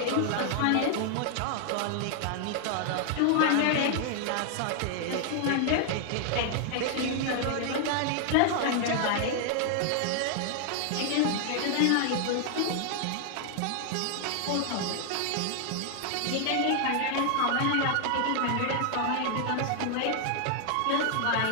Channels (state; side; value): different; both; correlation 0.00